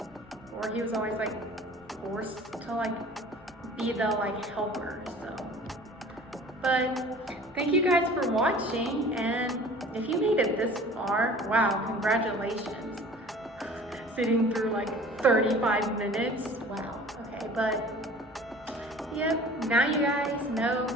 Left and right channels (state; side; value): normal; both; correlation 0.45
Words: or he was always like forced to like be the like helper. So, but thank you guys for watching, and if you made it this far, wow, congratulations. Sitting through like 35 minutes. Wow. Okay, but yep, now you guys know